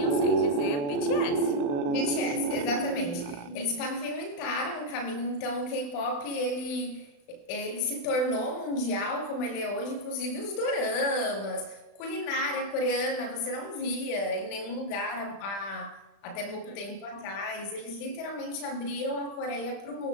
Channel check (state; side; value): late; right; 35 ms